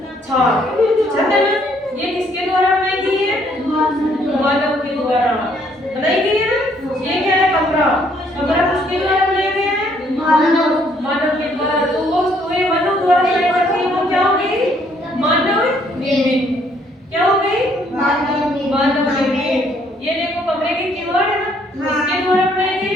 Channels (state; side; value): normal; both; correlation 0.66